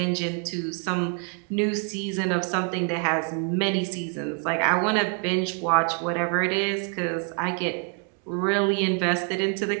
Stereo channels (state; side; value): quieter; left; 39.7 dB